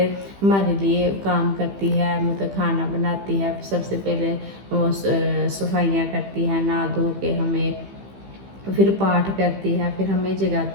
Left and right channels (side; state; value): left; late; 15 ms